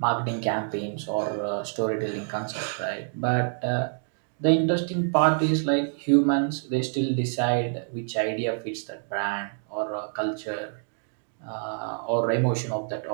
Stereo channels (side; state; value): left; silent; digital silence